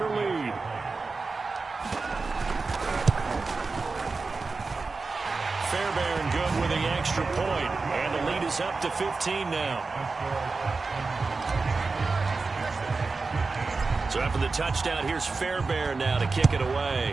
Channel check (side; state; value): left; quieter; 4.1 dB